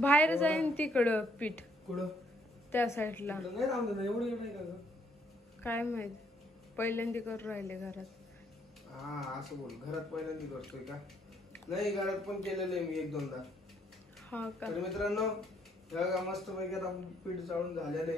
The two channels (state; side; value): normal; both; correlation 0.69